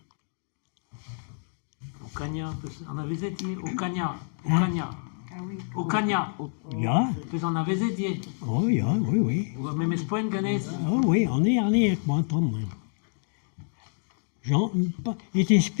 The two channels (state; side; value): silent; right; 60 dB below the other